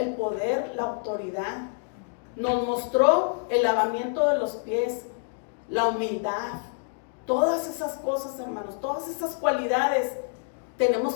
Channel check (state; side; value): silent; right; 60 dB below the other